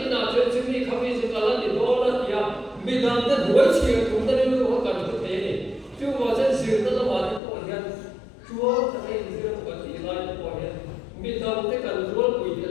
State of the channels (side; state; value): right; drops out; at 7.4 s